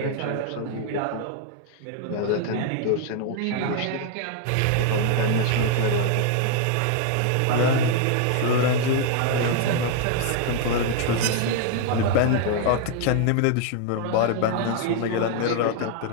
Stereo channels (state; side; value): different; both; correlation 0.00